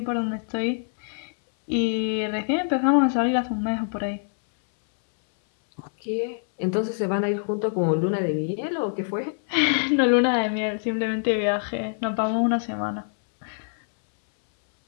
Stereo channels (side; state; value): right; silent; 62 dB below the other